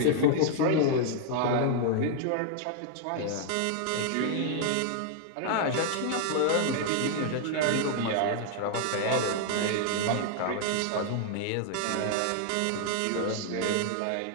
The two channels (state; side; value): different; both; correlation 0.00